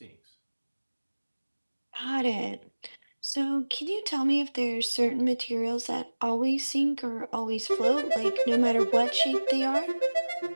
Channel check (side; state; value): both; inverted; correlation -1.00